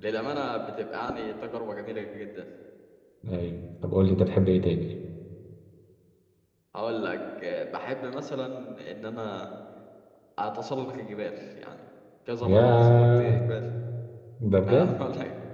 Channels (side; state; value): both; identical; correlation 1.00